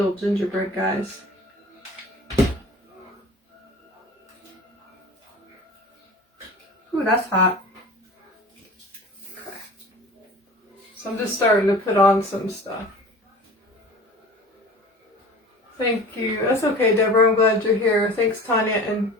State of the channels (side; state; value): both; normal; correlation 0.40